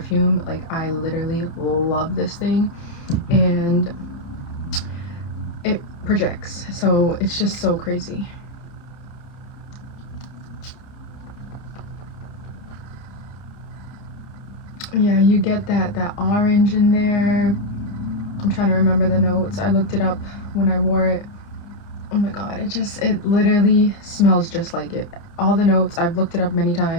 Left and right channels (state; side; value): late; right; 29 ms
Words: Like, I literally love this thing, and it projects, so it's just so crazy. Yeah, you get that orange in there. I'm trying to remember the notes. I looked it up when I wore it. Oh my god, it literally smells just like it. All the notes, I've looked it up many